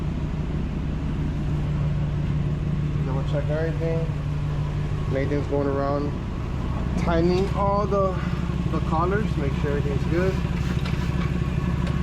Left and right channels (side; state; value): both; identical; correlation 1.00